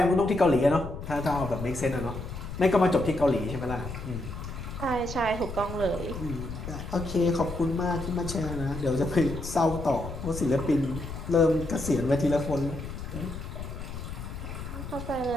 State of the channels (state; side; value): noise; left; rumble, 8 dB below the sound